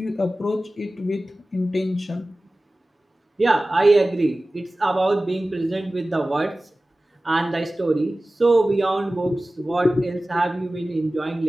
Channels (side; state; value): both; normal; correlation 0.97